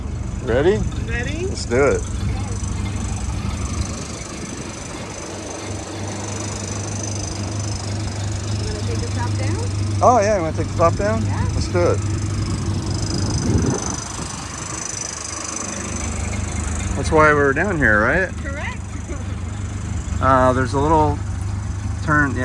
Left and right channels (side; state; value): both; identical; correlation 1.00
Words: Ready? Ready? Let's do it. You want to take the top down? Oh yeah, you want to take the top down? Yeah. Let's do it. That's why we're down here, right? Correct. There's a little turn,